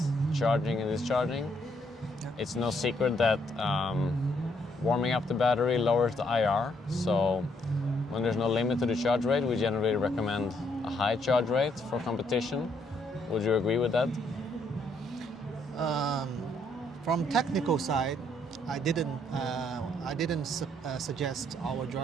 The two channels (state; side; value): normal; both; correlation 0.71